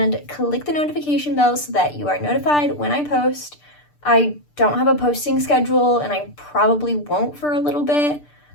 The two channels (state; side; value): late; right; 6.7 ms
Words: click the notification bell so that you are notified when I post. I don't have a posting schedule and I probably won't for a little bit.